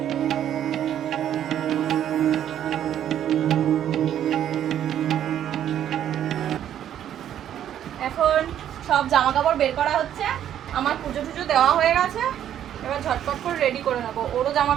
এখন সব জামা কাপড় বের করা হচ্ছে, আমার পুজো টুজো দেওয়া হয়ে গেছে, এবার ঝটপট করে রেডি করে নেবো। ওরও জামা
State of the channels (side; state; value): left; quieter; 10.5 dB